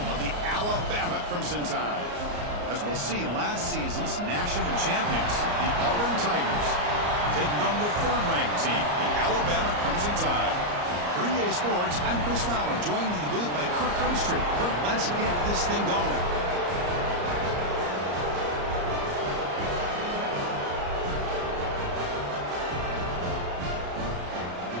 of the Alabama Crimson Tide. As we'll see, last season's national champions, the Auburn Tigers, taking on the third-ranked team, the Alabama Crimson Tide. For EA Sports, I'm Chris Fowler, joined in the booth by Kirk Hermstreet. Kirk, let's get this thing going.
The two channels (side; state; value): left; late; 34 ms